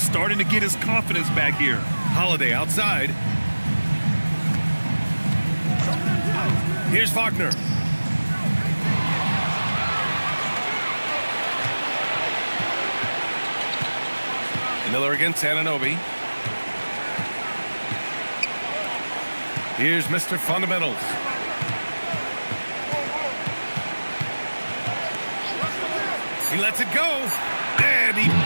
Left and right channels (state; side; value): inverted; both; correlation -1.00